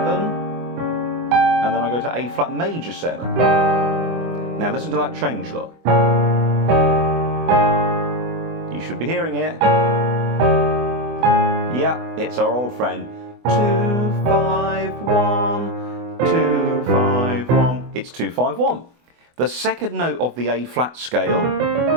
and then I go to A flat major 7. Now listen to that change, look. You should be hearing it. Yeah, it's our old friend. 2, 5, 1, 2, 5, 1. It's 2, 5, 1. The second note of the A flat scale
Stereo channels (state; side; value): late; left; 24 ms